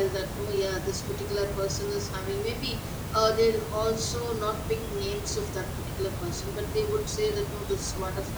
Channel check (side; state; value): both; identical; correlation 1.00